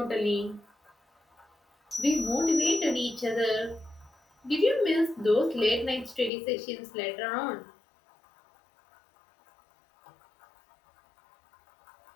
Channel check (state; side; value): drops out; right; at 6.3 s